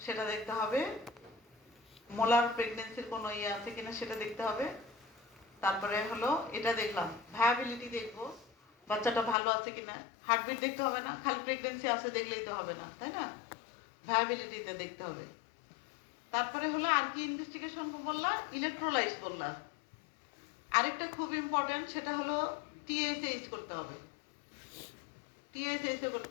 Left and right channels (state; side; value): drops out; right; at 9.3 s